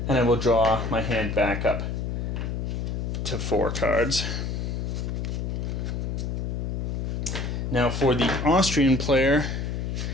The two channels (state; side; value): noise; left; hum, 2 dB below the sound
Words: And I will draw my hand back up to 4 cards. Now for the Austrian player,